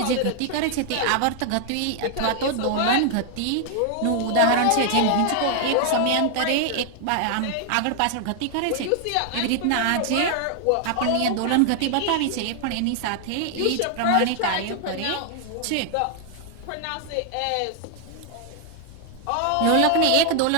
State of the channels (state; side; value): different; both; correlation 0.00